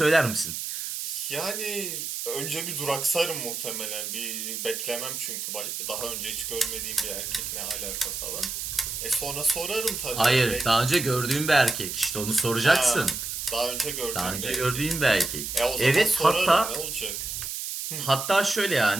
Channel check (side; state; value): right; noise; hiss, 5 dB below the sound